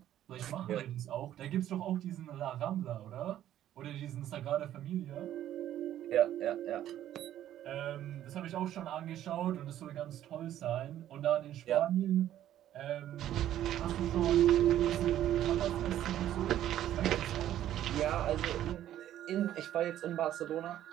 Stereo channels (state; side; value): quieter; left; 12.1 dB